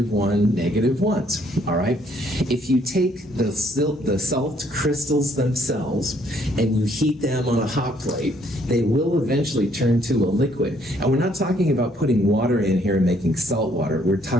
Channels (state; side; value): normal; both; correlation 0.66